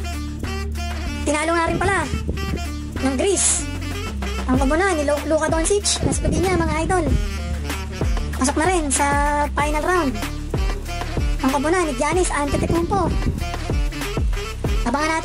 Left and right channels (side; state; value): both; identical; correlation 1.00